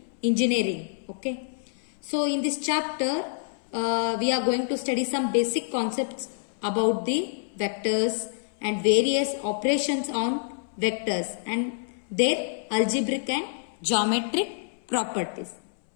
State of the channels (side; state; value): right; silent; 60 dB below the other